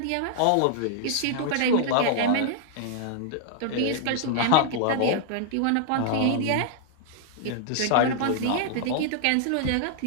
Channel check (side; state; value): both; different; correlation -0.01